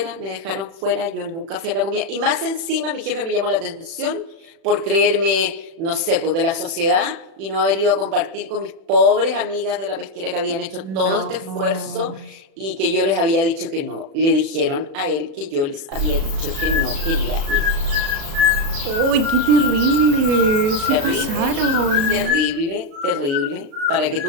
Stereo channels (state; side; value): late; left; 36 ms